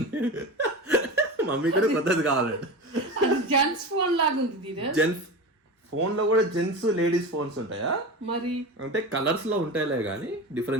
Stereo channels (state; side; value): normal; both; correlation 0.27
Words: మమ్మీ కూడా కొత్తది కావాలి. జెంట్స్ ఫోన్ లాగా ఉంది. జెంట్స్ ఫోన్ లో కూడా జెంట్స్ లేడీస్ ఫోన్స్ ఉంటాయా? మరి అంటే కలర్స్ లో ఉంటాయిలే కానీ